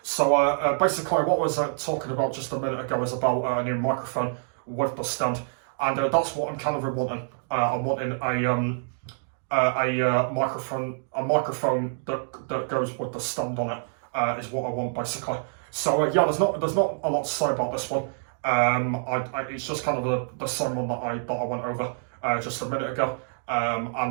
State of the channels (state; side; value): silent; left; digital silence